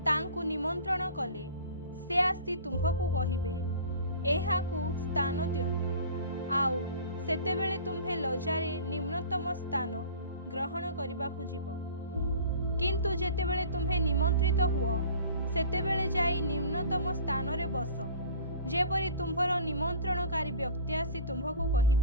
तांकु निमंत्रण कले से आसी तुम्भकु कहिबे एहाकु स्थान दियंतु। आउ सेतेबेले तुम्हे लजारे निम्नतम स्थान ग्रहण करिबाकु जीव। किंतु जेतेबेले तुम्हे निमंत्रित हुओ सेतेबेले जाई निम्नतम स्थान रे बस, जेपरि तुम्भर निमंत्रणकारी व्यक्ति आसी तुम्भकु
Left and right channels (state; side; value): inverted; both; correlation -0.42